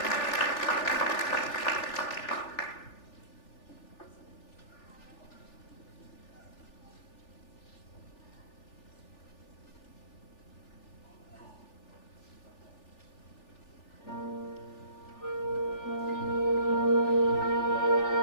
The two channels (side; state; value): right; late; 3.4 ms